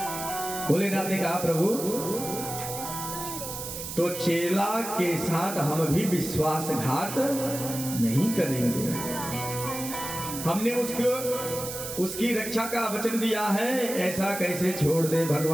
भोलेनाथ ने कहा प्रभु तो चेला के साथ हम भी विश्वासघात नहीं करेंगे, हमने उसकी रक्षा का वचन दिया है, ऐसा कैसे छोड़ दे?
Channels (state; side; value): noise; right; hiss, 7 dB below the sound